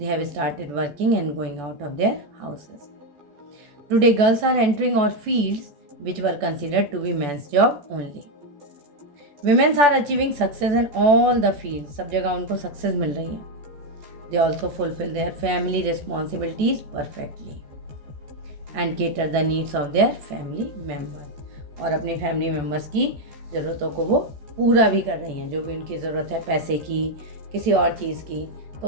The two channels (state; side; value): late; left; 14 ms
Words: have started working and going out of their houses. Today girls are entering all fields which were considered to be men's job only. Women are achieving success in all the fields. सब जगह उनको success मिल रही है. They also fulfill their family responsibilities perfectly and cater the needs of their family members. और अपने family members की ज़रूरतों को वो पूरा भी कर रही हैं. जो भी उनकी ज़रूरत है, पैसे की, किसी और चीज़ की,